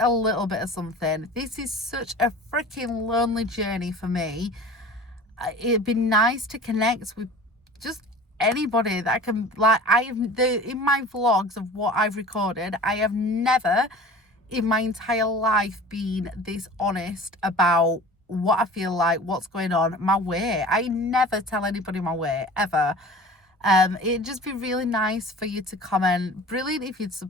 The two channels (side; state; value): both; normal; correlation 0.40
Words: little bit of something. This is such a freaking lonely journey for me. It'd be nice to connect with just anybody that I can, like, in my vlogs of what I've recorded, I have never in my entire life been this honest about what I feel like, what's going on, my weight. I never tell anybody my weight, ever. It'd just be really nice for you to comment. Brilliant if you'd